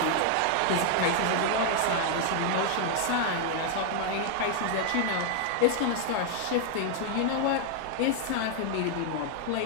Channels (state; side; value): different; both; correlation 0.00